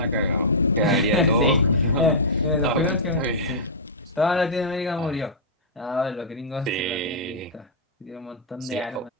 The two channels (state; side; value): normal; both; correlation -0.12